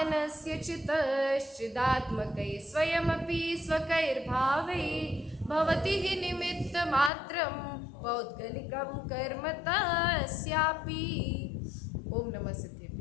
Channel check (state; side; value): drops out; right; at 7.1 s